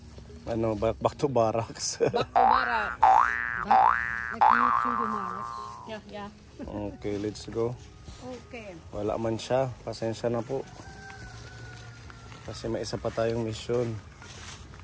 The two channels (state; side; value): identical; both; correlation 1.00